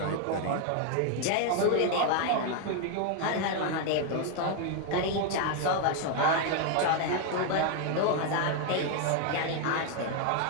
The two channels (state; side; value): different; both; correlation 0.00